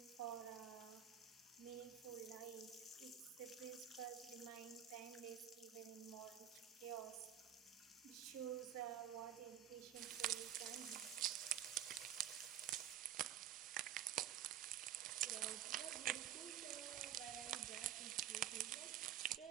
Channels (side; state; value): left; quieter; 10.9 dB